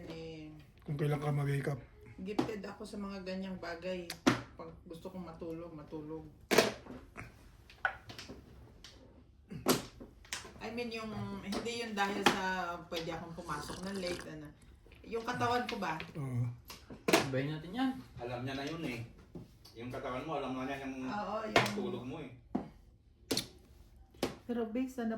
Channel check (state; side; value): identical; both; correlation 1.00